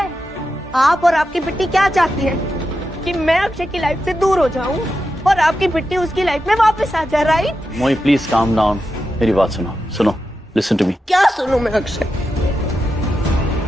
आप और आपकी बिट्टी क्या चाहती है कि मैं अक्षय की लाइफ से दूर हो जाऊं और आपकी बिट्टी उसकी लाइफ में वापस आ जाए, राइट? मोई प्लीज काम डाउन, मेरी बात सुनो, लिसन टू मी। क्या सुनूं मैं अक्षय?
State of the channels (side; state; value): both; normal; correlation 0.89